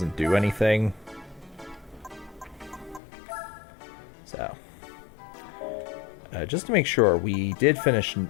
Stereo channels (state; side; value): drops out; right; at 3.0 s